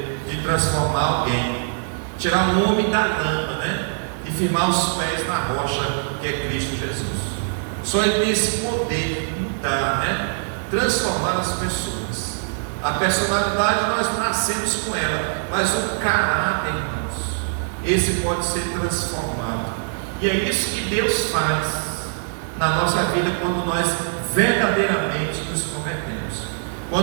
de transformar alguém, tirar um homem da lama, né? E firmar os pés na rocha que é Cristo Jesus. Só Ele tem esse poder de mudar, né? Transformar as pessoas. A personalidade nós nascemos com ela, mas o caráter, irmãos, esse pode ser transformado. E é isso que Deus faz na nossa vida quando nós verdadeiramente nos convertemos,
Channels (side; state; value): left; silent; digital silence